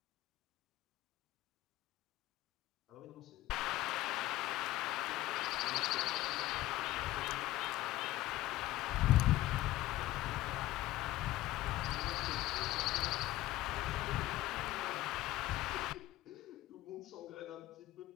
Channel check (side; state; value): right; quieter; 16.1 dB